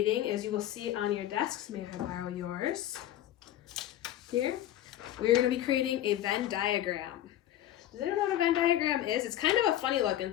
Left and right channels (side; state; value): right; quieter; 12.5 dB